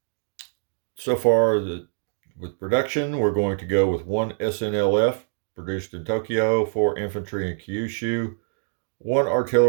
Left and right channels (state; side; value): silent; left; digital silence